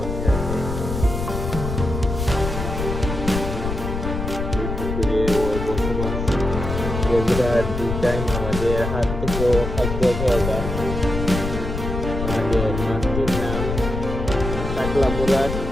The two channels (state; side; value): noise; left; rumble, 4 dB below the sound